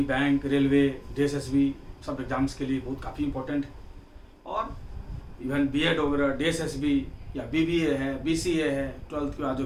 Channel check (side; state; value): both; identical; correlation 1.00